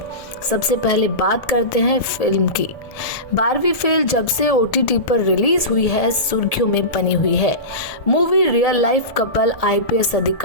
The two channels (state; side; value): late; right; 1.2 ms